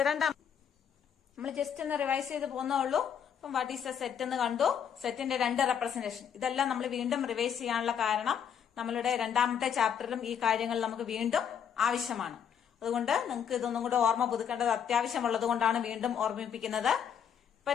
രണ്ടാം. നമ്മൾ ജസ്റ്റ് ഒന്ന് റിവൈസ് ചെയ്ത് പോകുന്നുള്ളൂ. അപ്പം വാട്ട് ഈസ് എ സെറ്റ് എന്ന് കണ്ടു. സെറ്റിന്റെ രണ്ട് റെപ്രസെന്റേഷൻ. ഇതെല്ലാം നമ്മൾ വീണ്ടും റിവൈസ് ചെയ്യാനുള്ള കാരണം നമ്മളുടെ രണ്ടാമത്തെ ചാപ്റ്ററിലും ഈ കാര്യങ്ങൾ നമുക്ക് വീണ്ടും ആവശ്യമാണ്. അതുകൊണ്ട് നിങ്ങൾക്ക് ഇതൊന്നും കൂടെ ഓർമ്മ പുതുക്കേണ്ടത് അത്യാവശ്യമുള്ളത് കൊണ്ടാണ് വീണ്ടും ഓർമ്മിപ്പിക്കുന്നത്. ഇപ്പൊ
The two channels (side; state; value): right; quieter; 8.2 dB